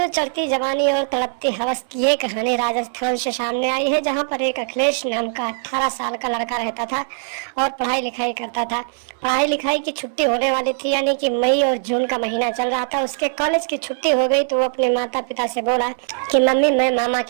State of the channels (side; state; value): left; silent; 62 dB below the other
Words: चढ़ती जवानी और तड़पती हवस की ये कहानी राजस्थान से सामने आई है, जहां पर एक अखिलेश नाम का 18 साल का लड़का रहता था और पढ़ाई लिखाई करता था। पढ़ाई लिखाई की छुट्टी होने वाली थी, यानी कि मई और जून का महीना चल रहा था। उसके कॉलेज की छुट्टी हो गई तो वो अपने माता पिता से बोला कि मम्मी, मैं मामा